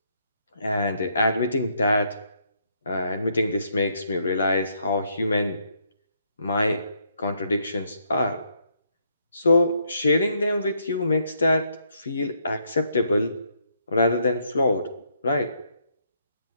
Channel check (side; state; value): both; inverted; correlation -0.74